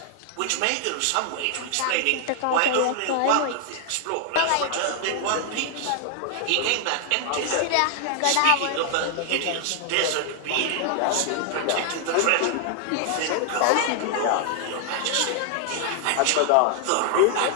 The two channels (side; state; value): both; different; correlation 0.00